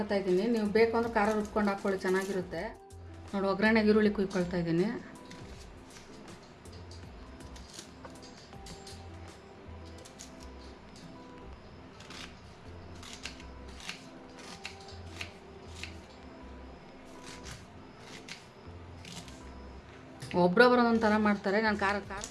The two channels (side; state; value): both; identical; correlation 1.00